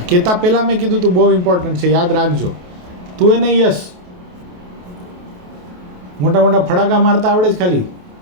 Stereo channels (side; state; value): left; late; 28 ms